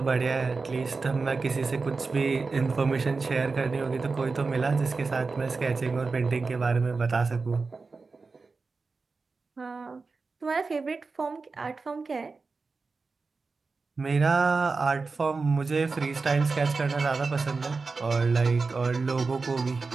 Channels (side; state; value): left; quieter; 4.2 dB